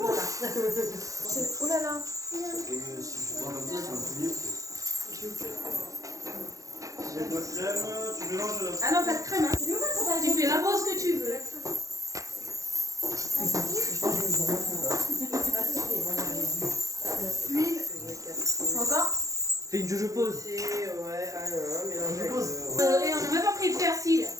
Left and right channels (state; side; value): late; left; 0.16 ms